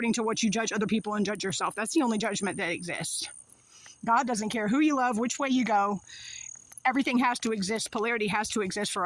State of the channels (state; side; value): identical; both; correlation 1.00